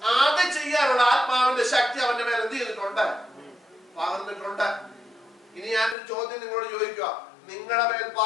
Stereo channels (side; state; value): right; drops out; at 6.0 s